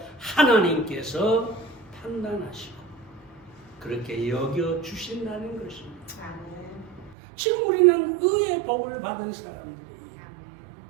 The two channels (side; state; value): left; drops out; at 7.2 s